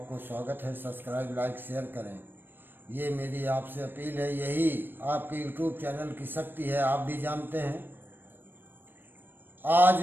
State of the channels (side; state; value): left; late; 0.095 ms